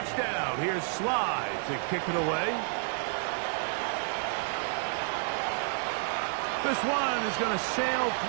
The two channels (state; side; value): silent; left; 58 dB below the other